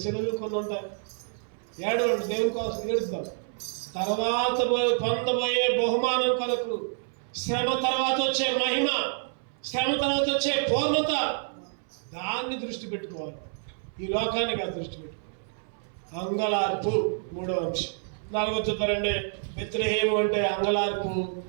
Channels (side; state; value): left; silent; 59 dB below the other